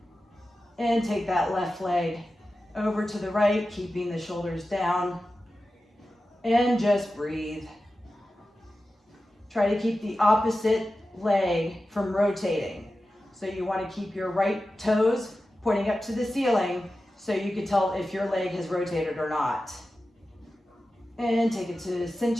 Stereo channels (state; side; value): normal; both; correlation 0.93